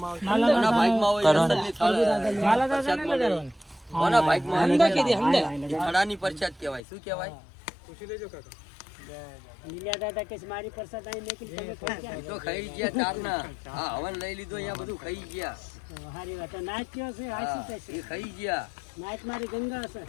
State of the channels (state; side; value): drops out; right; at 6.8 s